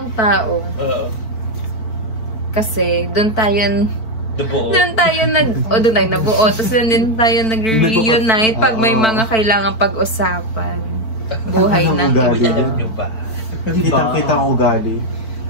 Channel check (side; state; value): right; late; 4.5 ms